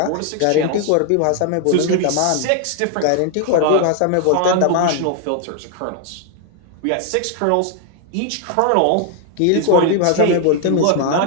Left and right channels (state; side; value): different; both; correlation 0.00